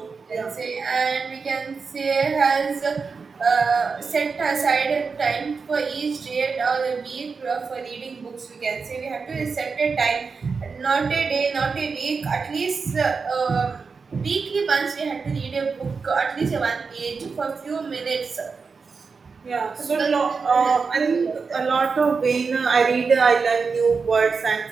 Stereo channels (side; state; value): left; quieter; 5.0 dB